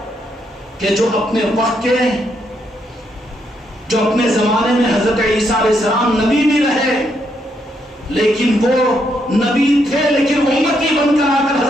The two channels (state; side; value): normal; both; correlation 0.77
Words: کہ جو اپنے وقت کے، جو اپنے زمانے میں حضرت عیسیٰ علیہ السلام نبی بھی رہے، لیکن وہ نبی تھے لیکن امتی بن کر آ کر